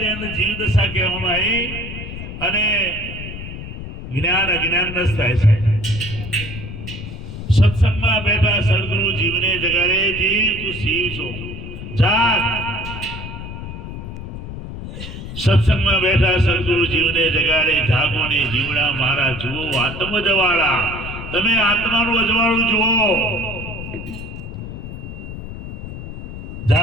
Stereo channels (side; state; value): left; noise; rumble, 9 dB below the sound